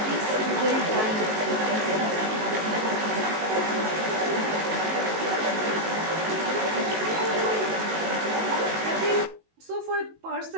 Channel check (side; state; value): left; late; 19 ms